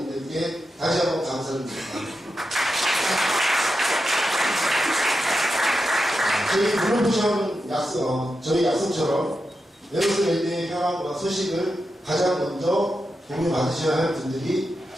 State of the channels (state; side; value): normal; both; correlation 0.88